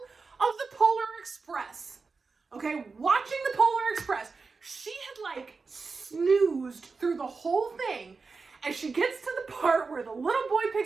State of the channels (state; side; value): quieter; left; 4.4 dB